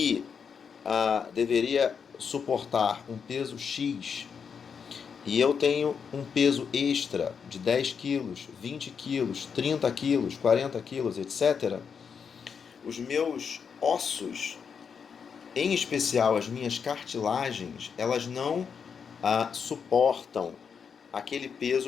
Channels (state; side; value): quieter; right; 6.5 dB